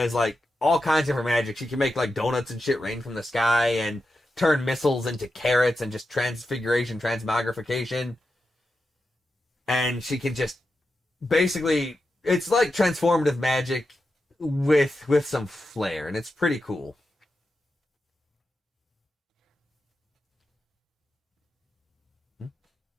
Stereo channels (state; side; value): normal; both; correlation 0.89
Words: like all kinds of her magic. She can make like donuts and shit rain from the sky and turn missiles into carrots and just transfiguration, transmogrification. And she can just basically, it's like transformative magic with some flair, and it's pretty cool.